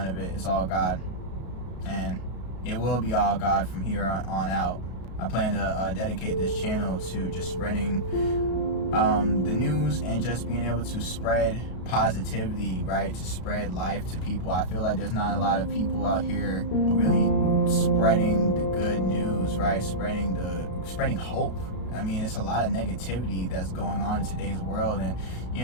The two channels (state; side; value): late; right; 33 ms